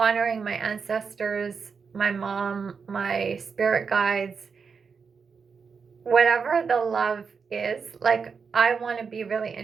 my ancestors, my mom, my spirit guides, whatever the love is, like I want to be really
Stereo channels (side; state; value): left; quieter; 5.6 dB